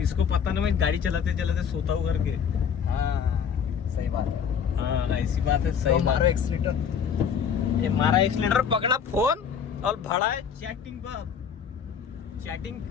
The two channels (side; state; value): right; quieter; 7.4 dB